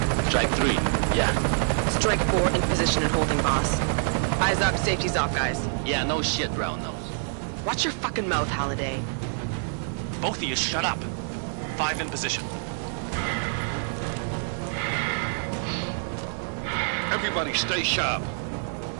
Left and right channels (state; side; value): silent; left; digital silence